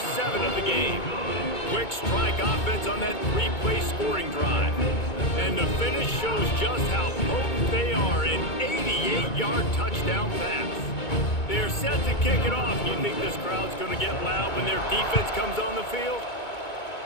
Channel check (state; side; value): late; right; 2.2 ms